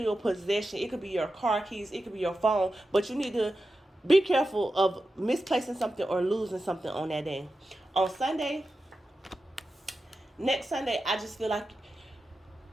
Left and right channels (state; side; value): normal; both; correlation 0.91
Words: possession. It could be your car keys. It could be your phone. But you need to be careful of misplacing something or losing something on that day. On Sunday, next Sunday, I just feel like